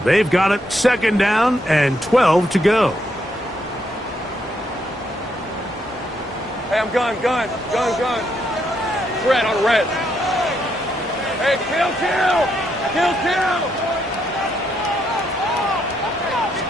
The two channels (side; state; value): both; normal; correlation 0.77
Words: They've got it 2nd down and 12 to go. Hey, I'm gun. Red on red. Hey, kill!